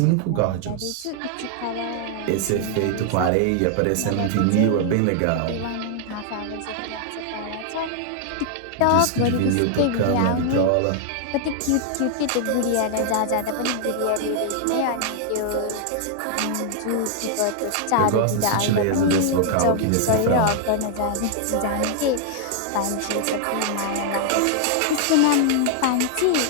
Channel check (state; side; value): different; both; correlation 0.00